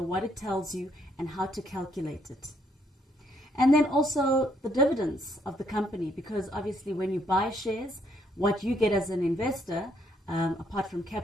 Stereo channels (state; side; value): normal; both; correlation 0.70